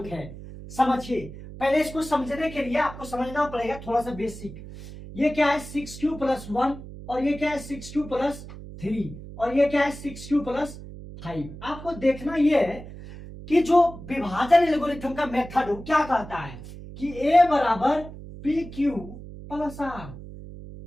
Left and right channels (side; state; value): right; noise; hum, 13 dB below the sound